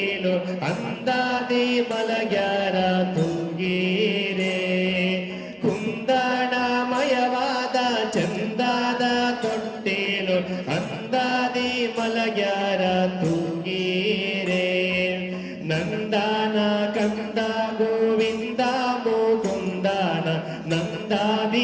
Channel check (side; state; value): both; identical; correlation 1.00